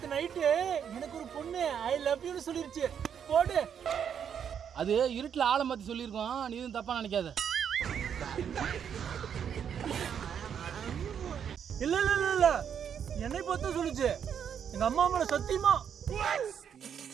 நைட்டு எனக்கு ஒரு பொண்ணு ஐ லவ் யூன்னு சொல்லிருச்சு. போடு. அது இருட்டுல ஆளை மாத்தி சொல்லியிருக்கோம், நீ எதுவும் தப்பா நினைக்காத. இல்ல இல்ல இல்ல இல்ல என்னை பார்த்து சொல்லுச்சு. எங்க அம்மா மேல சத்தியமா.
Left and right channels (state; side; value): quieter; left; 8.1 dB